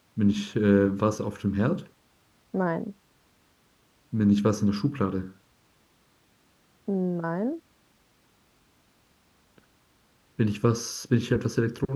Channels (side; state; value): both; identical; correlation 1.00